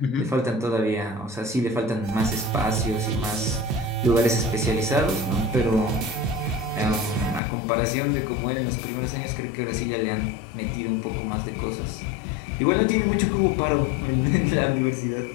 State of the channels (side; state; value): right; drops out; at 7.4 s